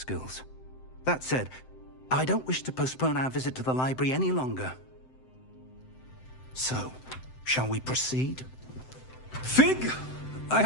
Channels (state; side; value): late; right; 7.8 ms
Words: That said, I don't wish to postpone our visit to the library any longer. So, shall we proceed? Fig! I